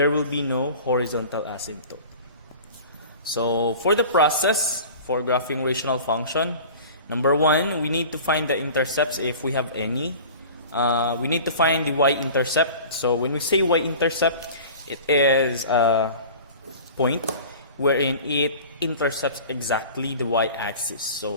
will be no horizontal asymptote. So for the process for graphing rational function, number one, we need to find the intercepts if we have any. We need to find the y-intercept. So when we say y-intercept, it is a point wherein it intercepts exactly the y-axis.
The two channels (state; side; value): inverted; both; correlation -0.40